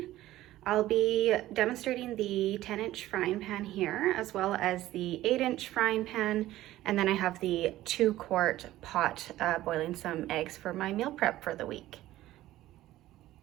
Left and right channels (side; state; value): left; quieter; 15.1 dB